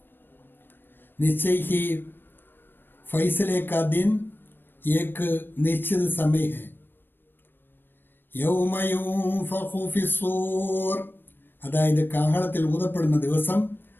निश्चय ही फैसले का दिन एक निश्चित समय है. यौम युंफഖു ഫിസ്സൂർ, അതായത് കാഹളത്തിൽ ഊതപ്പെടുന്ന ദിവസം.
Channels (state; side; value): late; right; 0.096 ms